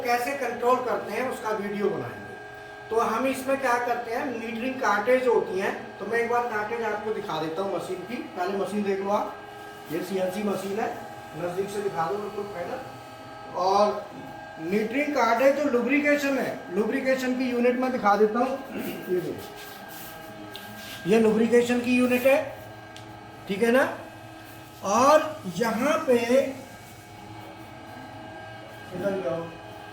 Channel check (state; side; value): identical; both; correlation 1.00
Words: कैसे कंट्रोल करते हैं उसका वीडियो बनाएंगे। तो हम इसमें क्या करते हैं, मीटरिंग कार्टेज होती हैं। तो मैं एक बार कार्टेज आपको दिखा देता हूँ मशीन की। पहले मशीन देख लो आप, ये सीएनसी मशीन है, नज़दीक से दिखा दो बिल्कुल पहले। और मीटरिंग कार्टेज जो लुब्रिकेशन है, लुब्रिकेशन की यूनिट में दिखा देता हूँ। ये देखो, ये लुब्रिकेशन की यूनिट है, ठीक है ना। और यहाँ पे